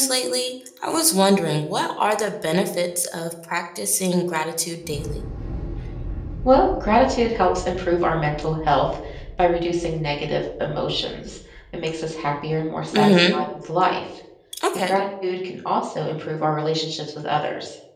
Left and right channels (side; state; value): both; identical; correlation 1.00